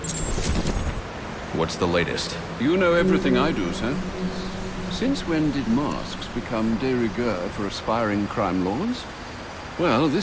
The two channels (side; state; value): both; identical; correlation 1.00